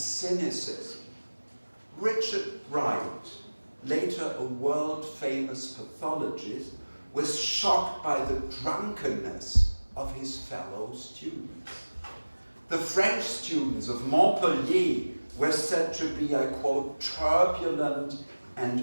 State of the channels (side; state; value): both; inverted; correlation -1.00